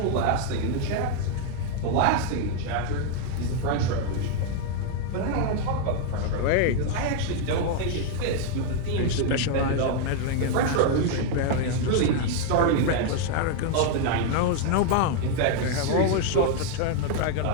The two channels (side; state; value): both; different; correlation 0.00